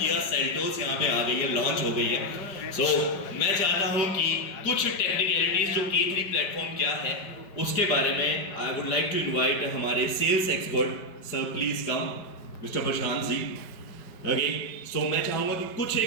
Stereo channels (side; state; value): right; late; 5.2 ms